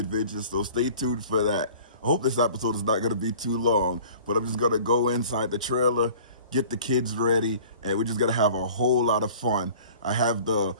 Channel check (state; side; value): inverted; both; correlation -0.47